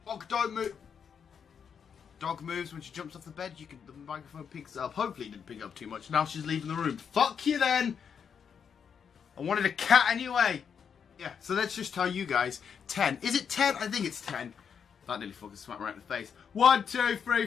Dog don't move. Dog moves when she jumps off the bed, the microphone picks it up. Hopefully it didn't pick up too much. Now she's leaving the room. Fuck you then! I wanted a cat anyway. Yeah, so let's just tell you guys. 10. Is it 10? I think it's 10. That nearly fucking smacked me right in the face. 1, 2, 3,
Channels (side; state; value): right; quieter; 7.1 dB